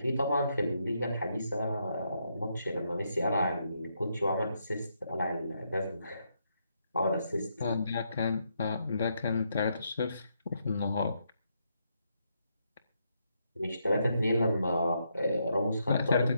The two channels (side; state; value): both; inverted; correlation -0.78